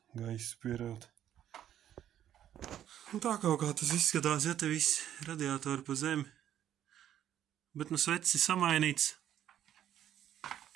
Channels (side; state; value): left; quieter; 10.9 dB